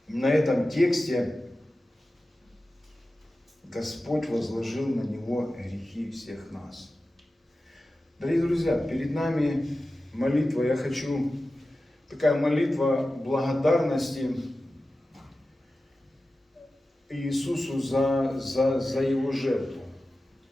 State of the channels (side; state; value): both; normal; correlation 0.94